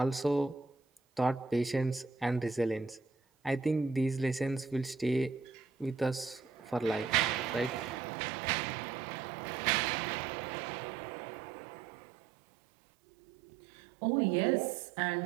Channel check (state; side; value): drops out; left; at 8.0 s